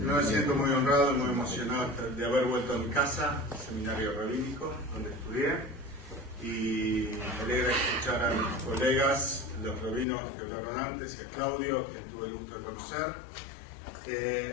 siento muy honrado y muy emocionado de haber vuelto a mi casa, el seminario rabínico, donde estudié. Y me alegra escuchar a mis colegas, los rabinos que hablaron antes, y a Claudio, que tuve el gusto de conocer.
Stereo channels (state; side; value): drops out; right; at 10.1 s